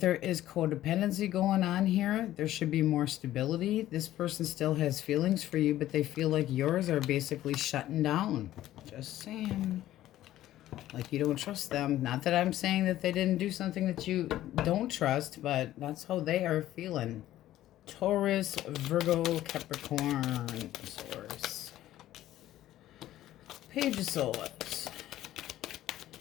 is codependency going on here. There should be more stability. This person still has feelings for you, but they feel like yours are basically shutting down. Just saying. Like you don't trust them. Not that I'm saying that they didn't do something that you don't trust, but that's how they are feeling. Taurus, Virgo, Capricorn, Source. Page of Swords.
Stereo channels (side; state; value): right; quieter; 13.8 dB